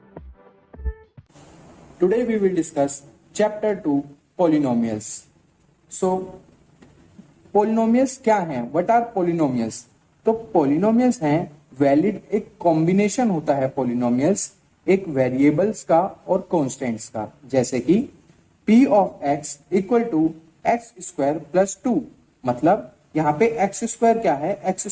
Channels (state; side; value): identical; both; correlation 1.00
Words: Today we will discuss chapter 2 polynomials. So polynomials क्या हैं? What are polynomials? तो polynomials हैं valid एक combination होता है polynomials एक variables का और कॉन्स्टेंट्स का, जैसे कि p of x equal to x square plus 2। मतलब यहाँ पे एक्स स्क्वायर क्या है? एक्स